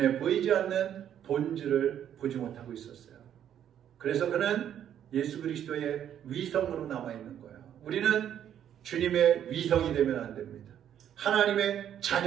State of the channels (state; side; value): quieter; left; 10.0 dB